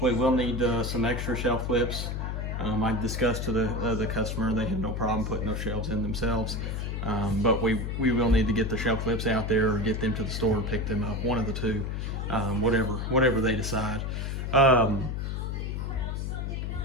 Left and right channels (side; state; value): left; noise; hum, 3 dB below the sound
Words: we will need some extra shelf clips. I discussed to the customer, they had no problem putting those shelves in themselves, but we will need to get the shelf clips out there or get them to the store and pick them up, one of the two, whatever they decide.